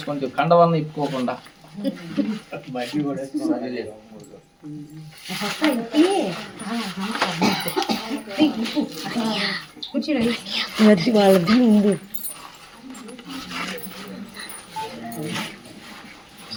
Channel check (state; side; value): identical; both; correlation 1.00